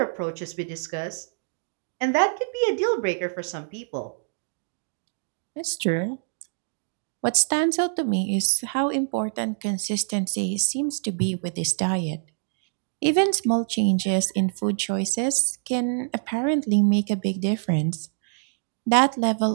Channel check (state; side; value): silent; left; digital silence